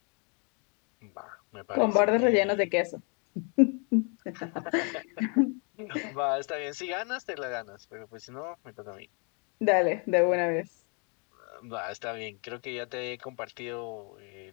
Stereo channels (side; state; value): right; quieter; 36.3 dB